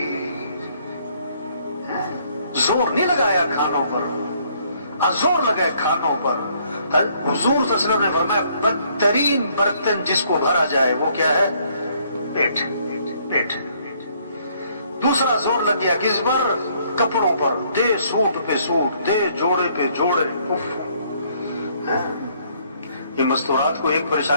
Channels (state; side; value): inverted; both; correlation -0.65